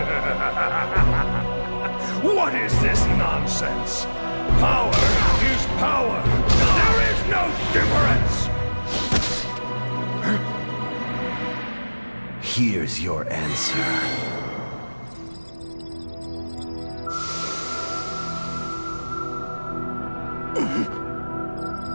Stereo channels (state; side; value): inverted; both; correlation -1.00